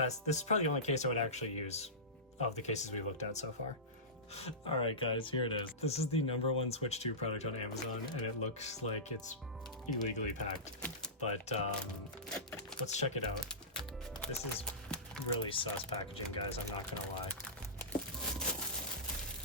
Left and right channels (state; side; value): normal; both; correlation -0.20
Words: This is probably the only case I would actually use of the cases we looked at so far. All right guys, here it is. This is the #1 Switch 2 product on Amazon, and it looks like it's illegally packed. But let's check it out. This is really sus packaging, guys, I'm not gonna lie.